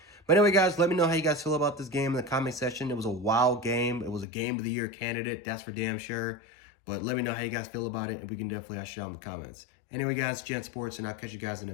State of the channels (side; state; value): right; drops out; at 4.2 s